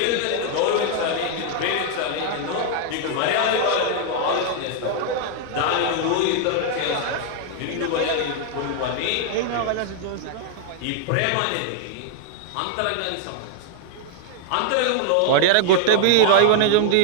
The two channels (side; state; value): both; different; correlation 0.00